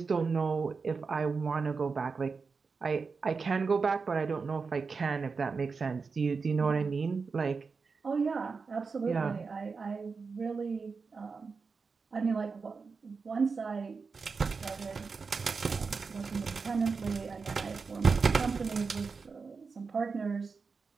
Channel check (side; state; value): left; quieter; 4.8 dB